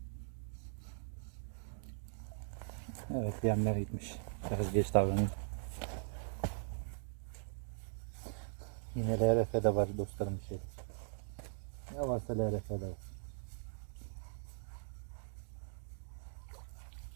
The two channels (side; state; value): left; silent; digital silence